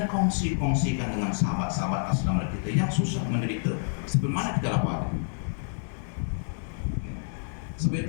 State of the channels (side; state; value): right; silent; digital silence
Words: kongsikan dengan sahabat-sahabat aslam kita yang susah menderita seperti mana kita lapar. Sebab